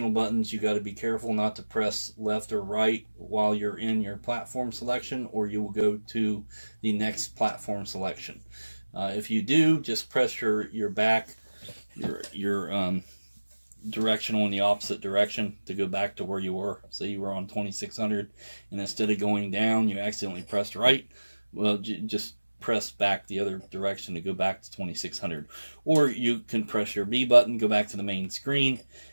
buttons, you got to be careful not to press left or right while you're in your platform selection, or you will go to the next platform selection. If you do, just press your back, your directional in the opposite direction to go back to where you were. Say you were on 2600, and instead of going down, you accidentally pressed right. Well, just press back the other direction to go back to 2600. Or you can press your B button, go back to the main screen,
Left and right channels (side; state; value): both; inverted; correlation -1.00